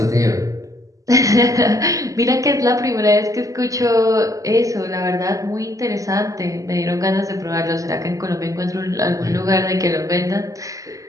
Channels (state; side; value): late; left; 0.16 ms